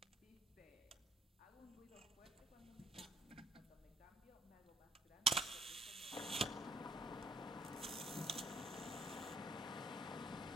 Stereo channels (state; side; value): normal; both; correlation 0.64